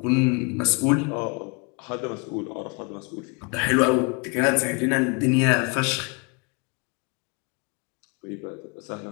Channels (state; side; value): quieter; right; 32.5 dB